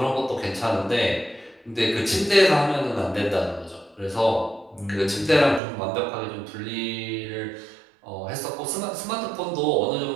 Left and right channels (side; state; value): left; drops out; at 5.6 s